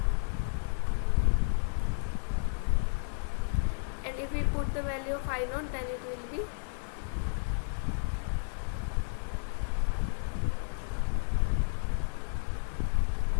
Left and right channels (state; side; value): silent; right; digital silence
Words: And if we put the value of I naught, then it will be